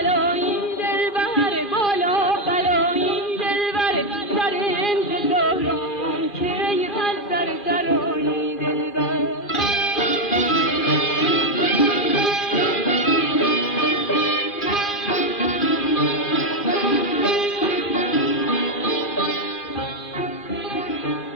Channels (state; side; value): late; right; 2.0 ms